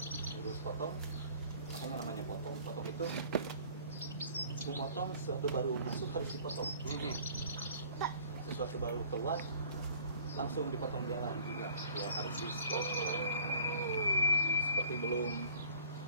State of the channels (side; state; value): both; inverted; correlation -0.52